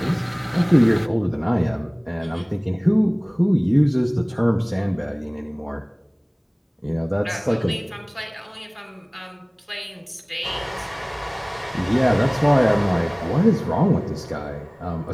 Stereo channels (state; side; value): identical; both; correlation 1.00